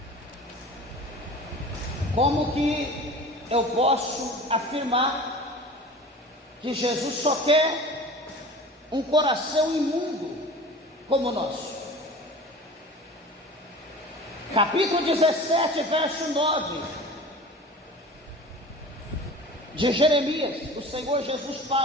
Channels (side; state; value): both; normal; correlation 0.38